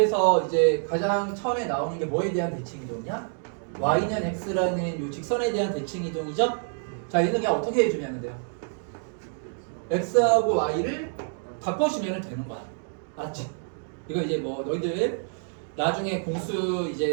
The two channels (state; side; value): silent; left; 60 dB below the other